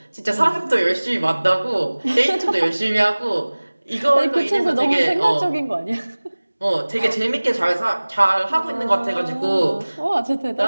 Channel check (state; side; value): inverted; both; correlation -1.00